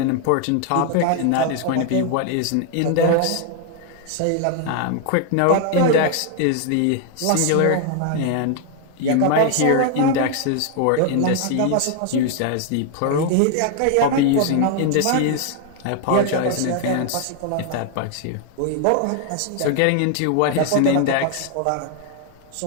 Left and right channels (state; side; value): different; both; correlation 0.00